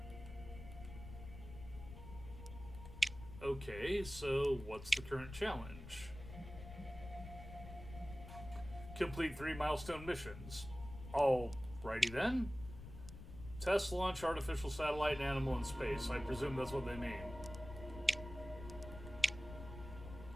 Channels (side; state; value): left; noise; rumble, 12 dB below the sound